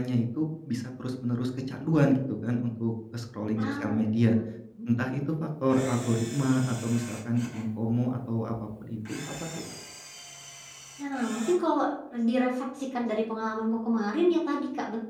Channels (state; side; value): identical; both; correlation 1.00